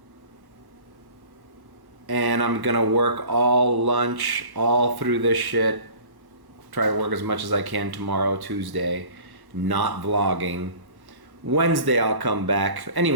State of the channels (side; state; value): left; late; 1.1 ms